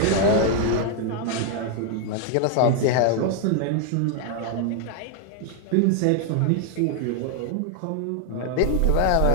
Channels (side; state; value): both; different; correlation 0.00